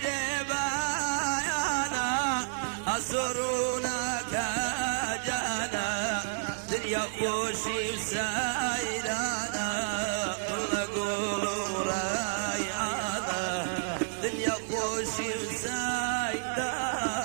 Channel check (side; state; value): left; silent; digital silence